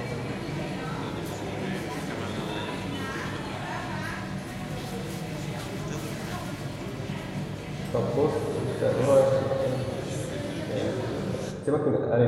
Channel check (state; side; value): identical; both; correlation 1.00